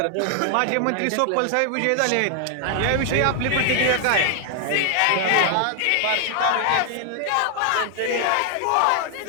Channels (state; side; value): different; both; correlation 0.00